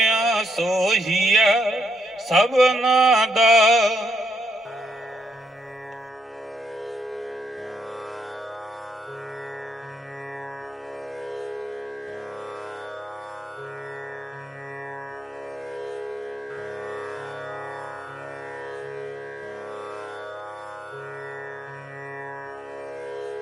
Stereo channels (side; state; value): both; normal; correlation 0.76